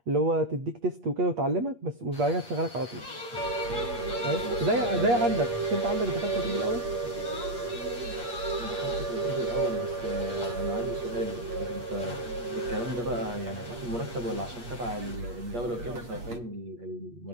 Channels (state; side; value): late; left; 8.4 ms